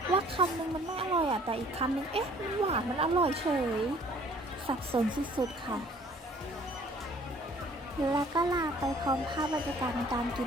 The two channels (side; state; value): both; normal; correlation 0.56